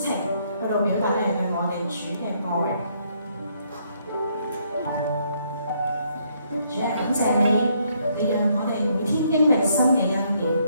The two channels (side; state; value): both; inverted; correlation -0.71